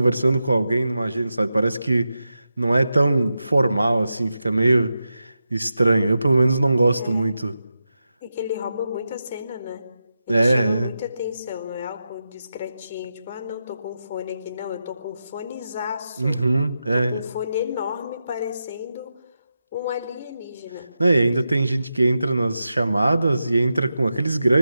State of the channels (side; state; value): both; inverted; correlation -0.89